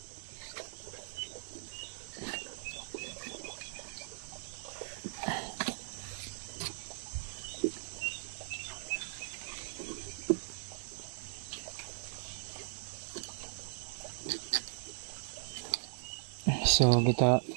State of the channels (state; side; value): silent; left; digital silence